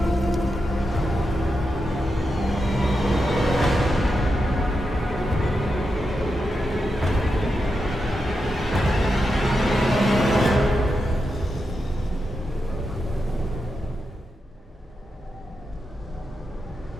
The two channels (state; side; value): normal; both; correlation 0.87